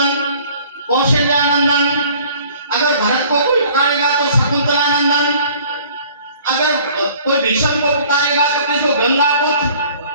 कौशल्यानंदन। अगर भरत को कोई पुकारेगा तो शकुंतलानंदन। अगर कोई भीष्म को पुकारेगा तो किसको? गंगा पुत्र।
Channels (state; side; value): inverted; both; correlation -0.53